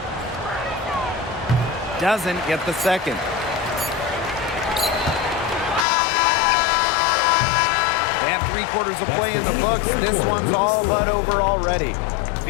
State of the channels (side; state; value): right; drops out; at 5.9 s